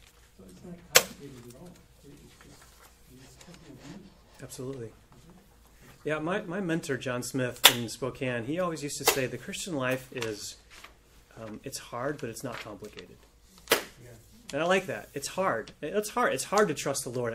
So it's not complicated at all. It's just, he's simple of you. Absolutely. Yeah, my mentor, John Smith in Spokane, he always used to say the Christian life is, it's hard, but it's not complicated. And I like that. It's hard. It's hard. It's hard to trust the Lord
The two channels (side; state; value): both; identical; correlation 1.00